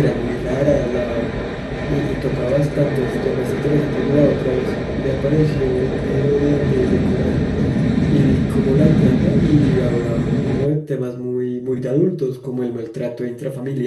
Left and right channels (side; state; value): both; identical; correlation 1.00